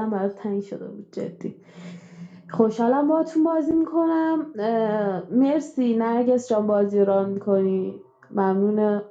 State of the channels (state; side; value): identical; both; correlation 1.00